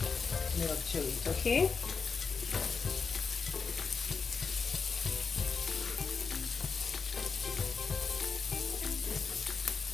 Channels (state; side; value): quieter; right; 5.1 dB